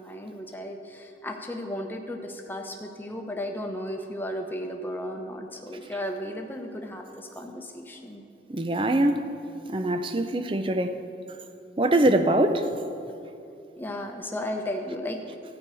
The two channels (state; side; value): normal; both; correlation 0.58